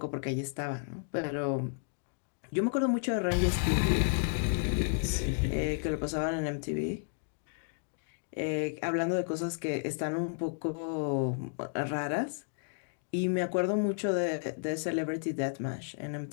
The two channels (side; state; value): right; silent; digital silence